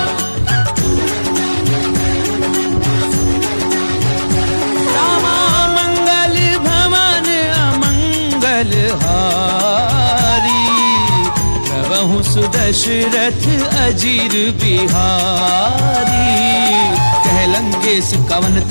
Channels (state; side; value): inverted; both; correlation -1.00